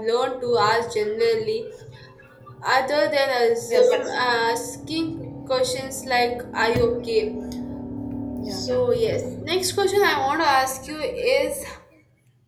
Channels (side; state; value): both; identical; correlation 1.00